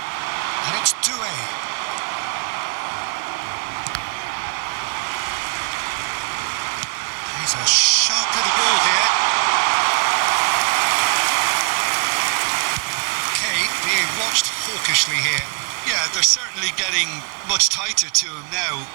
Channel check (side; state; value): left; quieter; 38.5 dB